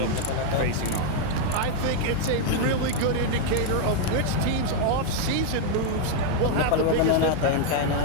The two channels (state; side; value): different; both; correlation 0.00